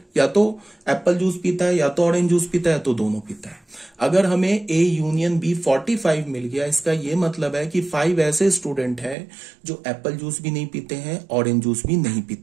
या तो एप्पल जूस पीता है, या तो ऑरेंज जूस पीता है, या तो दोनों पीता है। अगर हमें ए यूनियन बी 45 मिल गया, इसका यह मतलब है कि 5 ऐसे स्टूडेंट हैं जो एप्पल जूस भी नहीं पीते हैं, ऑरेंज जूस भी नहीं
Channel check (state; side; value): drops out; left; at 9.2 s